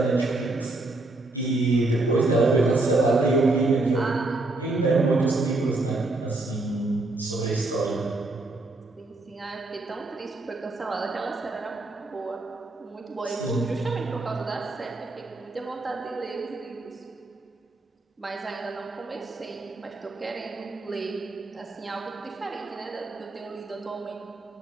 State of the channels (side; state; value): left; quieter; 3.0 dB